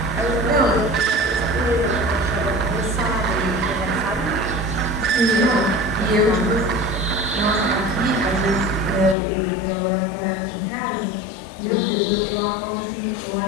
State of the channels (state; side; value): drops out; right; at 9.2 s